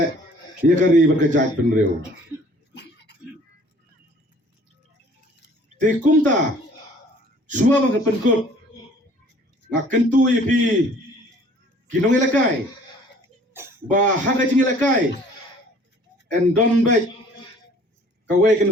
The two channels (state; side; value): normal; both; correlation 0.54